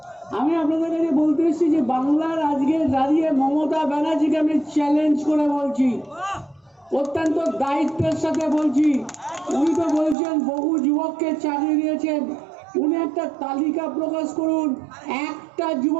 আমি আপনাদের কাছে বলতে এসেছি যে বাংলার আজকে দাঁড়িয়ে মমতা ব্যানার্জিকে আমি চ্যালেঞ্জ করে বলছি, অত্যন্ত দায়িত্বের সাথে বলছি। উনি তো বলছেন বহু যুবককে চাকরি দিয়েছেন, উনি একটা তালিকা প্রকাশ করুন, একটা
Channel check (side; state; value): left; drops out; at 10.2 s